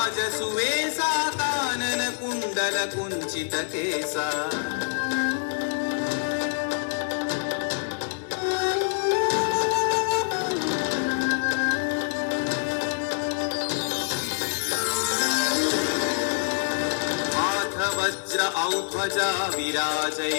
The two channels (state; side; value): silent; right; digital silence